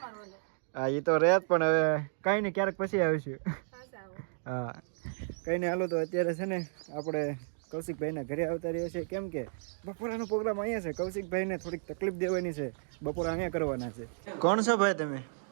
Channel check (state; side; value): silent; left; digital silence